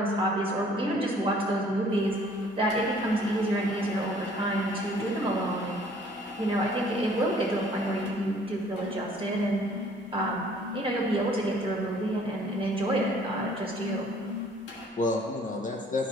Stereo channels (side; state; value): both; normal; correlation 0.57